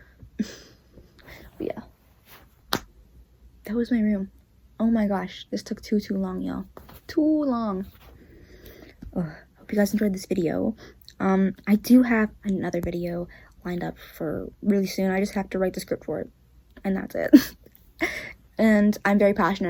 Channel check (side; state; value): both; identical; correlation 1.00